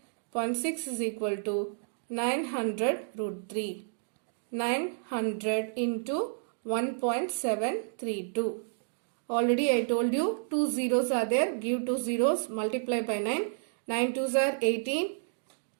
is equal to 900 root 3. 900 into 1.732. Already I told you 2 zeros are there. Give 2 zeros, multiply by 9. 9 2s are 18.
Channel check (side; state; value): left; silent; digital silence